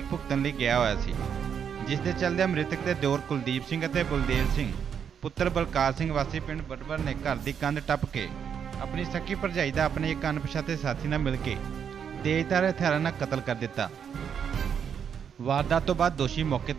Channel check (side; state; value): left; quieter; 7.7 dB